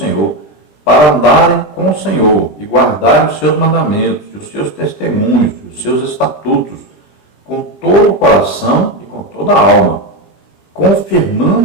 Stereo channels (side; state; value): right; late; 20 ms